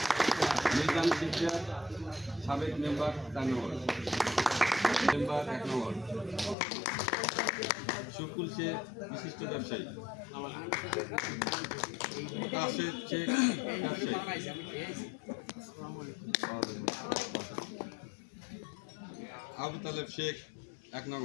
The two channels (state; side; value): drops out; right; at 6.6 s